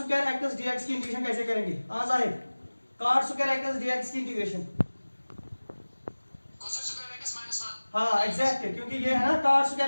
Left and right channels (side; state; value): both; inverted; correlation -1.00